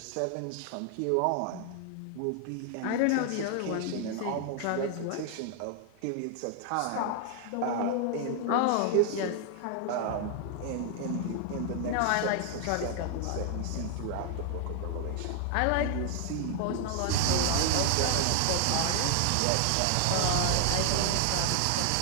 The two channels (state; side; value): different; both; correlation 0.00